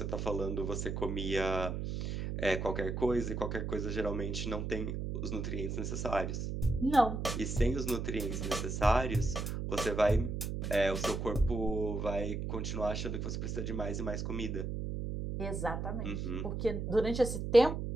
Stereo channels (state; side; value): noise; right; hum, 3 dB below the sound